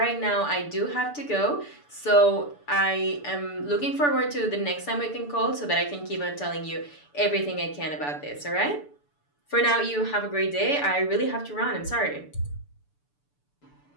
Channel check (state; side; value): late; right; 6.9 ms